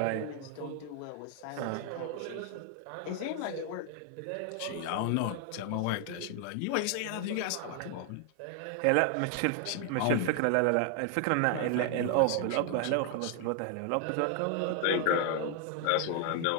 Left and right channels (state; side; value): different; both; correlation 0.00